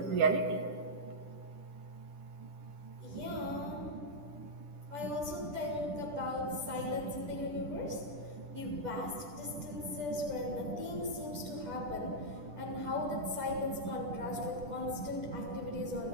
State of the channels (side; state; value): left; late; 10 ms